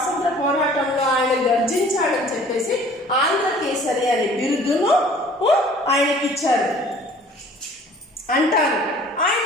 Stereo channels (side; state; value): both; normal; correlation 0.51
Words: పోరాటంలో ఆయన గర్జించాడని చెప్పేసి ఆంధ్రకేసరి అనే బిరుదును ఆయనకి ఇచ్చారు అంటారు.